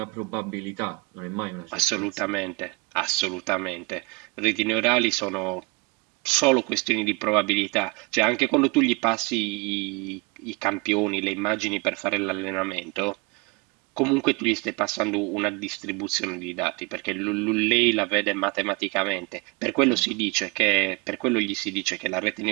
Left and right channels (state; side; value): quieter; left; 28.3 dB